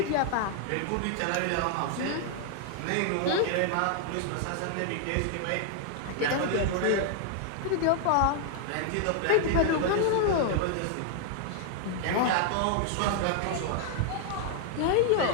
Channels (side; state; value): both; different; correlation 0.00